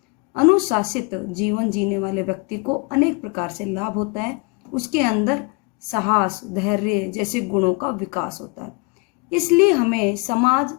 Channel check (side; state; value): right; quieter; 29.4 dB